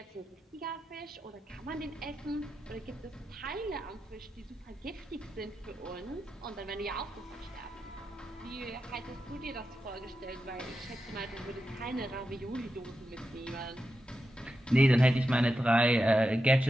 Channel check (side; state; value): both; normal; correlation 0.89